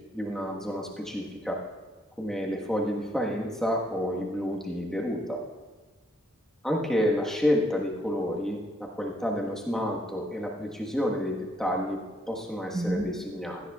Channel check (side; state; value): both; normal; correlation 0.71